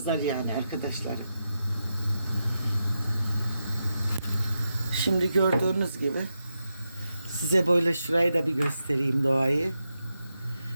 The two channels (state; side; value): inverted; both; correlation -0.87